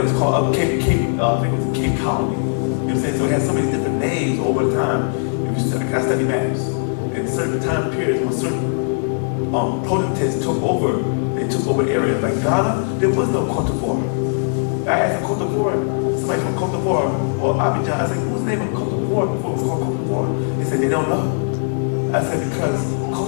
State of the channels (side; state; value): right; silent; digital silence